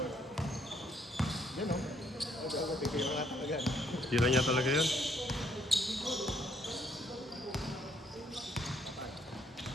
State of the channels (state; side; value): normal; both; correlation 0.69